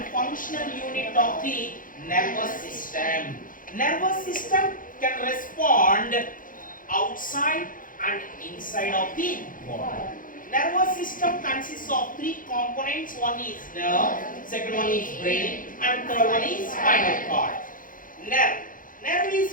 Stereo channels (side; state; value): right; late; 0.40 ms